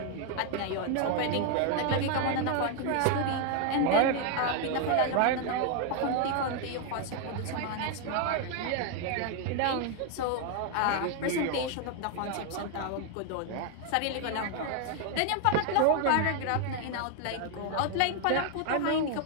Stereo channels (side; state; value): both; different; correlation 0.00